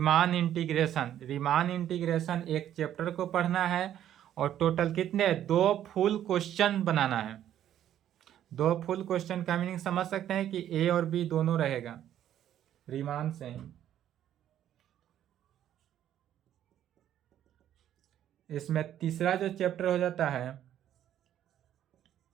इंटीग्रेशन। रीमान इंटीग्रेशन एक चैप्टर को पढ़ना है और टोटल कितने? 2 फुल क्वेश्चन बनाना है। 2 फुल क्वेश्चन का मीनिंग समझ सकते हैं कि ए और बी दोनों रहेगा रीमान से ही। इसमें तीसरा जो चैप्टर हो जाता है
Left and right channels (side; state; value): left; quieter; 11.1 dB